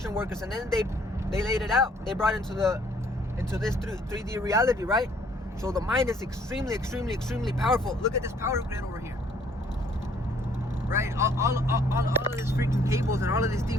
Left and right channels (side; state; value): both; normal; correlation 0.62